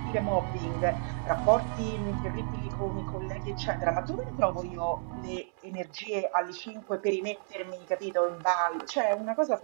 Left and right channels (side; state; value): left; silent; digital silence